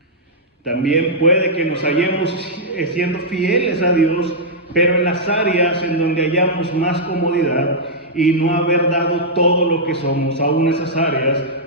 También puede que nos hallemos siendo fieles a Dios, pero en las áreas en donde hallamos más comodidad y no haber dado todo lo que somos, aún esas áreas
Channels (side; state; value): both; normal; correlation -0.09